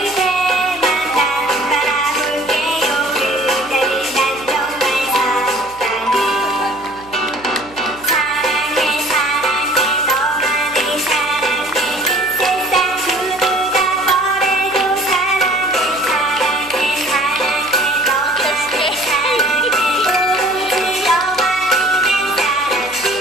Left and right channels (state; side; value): noise; right; hum, 23 dB below the sound